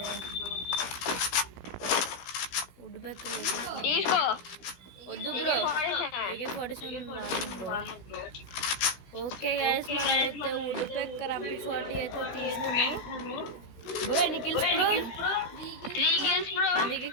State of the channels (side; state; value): right; late; 16 ms